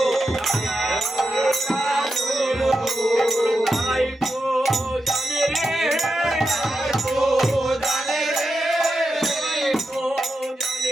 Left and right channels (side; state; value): both; normal; correlation 0.87